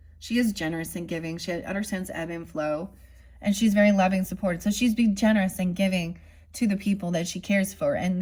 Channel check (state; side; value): identical; both; correlation 1.00